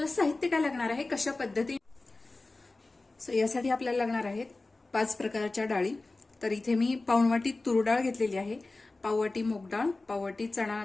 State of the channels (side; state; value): right; quieter; 3.3 dB